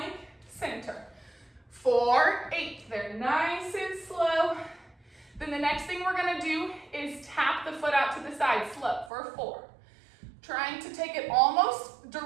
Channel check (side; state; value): left; drops out; at 9.1 s